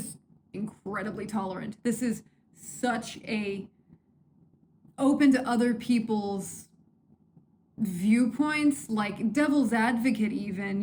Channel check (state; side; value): identical; both; correlation 1.00